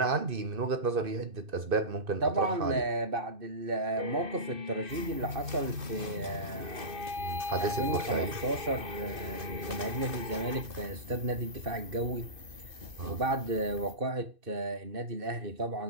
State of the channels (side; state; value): left; late; 2.6 ms